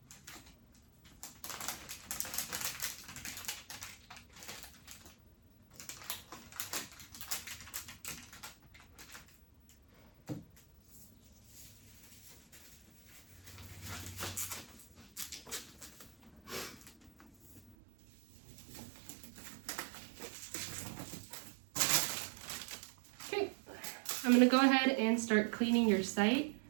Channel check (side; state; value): left; drops out; at 17.8 s